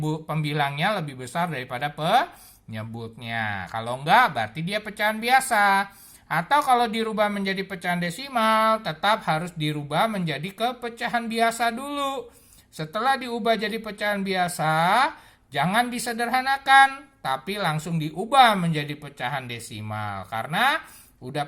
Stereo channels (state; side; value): identical; both; correlation 1.00